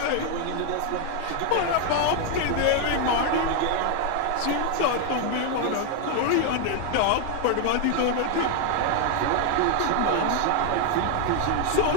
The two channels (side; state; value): both; different; correlation 0.01